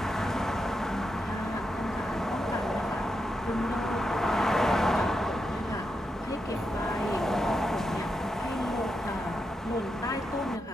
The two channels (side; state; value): both; normal; correlation 0.85